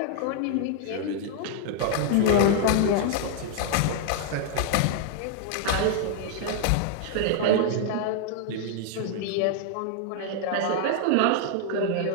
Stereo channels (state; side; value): different; both; correlation 0.00